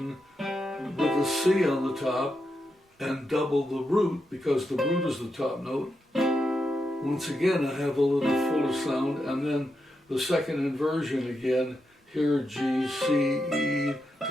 with a C on the top and double the root, because the root is the top note, once again I have a little fuller sound, and then the second inversion again, here G, C, E,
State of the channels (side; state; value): both; normal; correlation 0.85